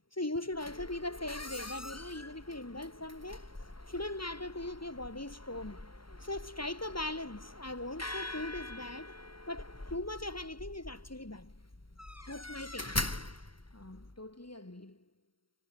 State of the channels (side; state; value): right; late; 0.73 ms